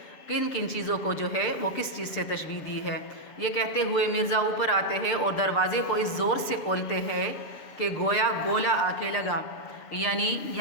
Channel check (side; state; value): right; late; 6.7 ms